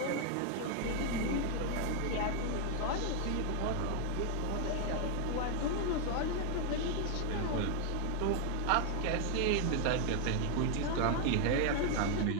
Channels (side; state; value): both; different; correlation 0.01